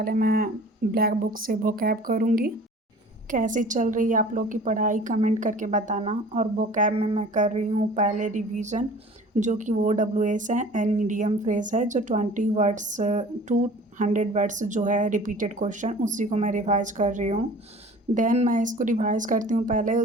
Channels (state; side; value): normal; both; correlation 0.45